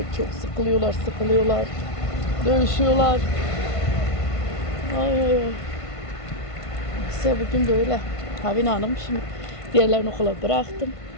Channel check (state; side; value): late; right; 1.5 ms